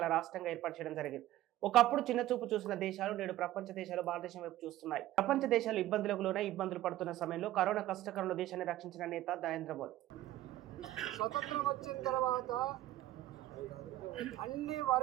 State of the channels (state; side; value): quieter; left; 14.8 dB